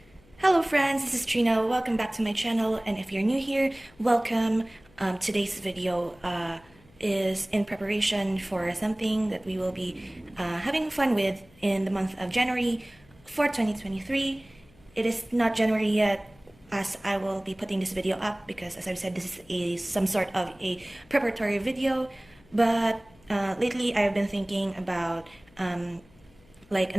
Hello friends, this is Trina. Welcome back to my channel, and if you're new here, welcome. Today's video is in preparation for something that we will be having fun with in the month of January for 2023. It is not January yet, as I will be putting this video up because, as I've said, this is some sort of a preparatory video. But lately I've been thinking about like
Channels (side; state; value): left; noise; hum, 28 dB below the sound